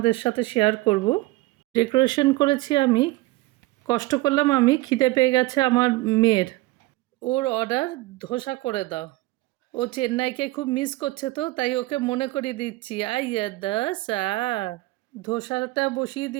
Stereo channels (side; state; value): left; quieter; 19.5 dB